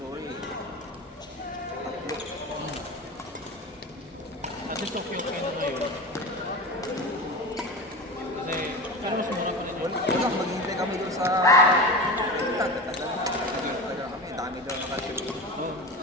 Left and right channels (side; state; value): both; normal; correlation 0.27